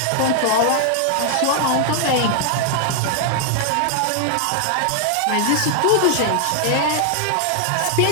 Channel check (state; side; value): different; both; correlation 0.00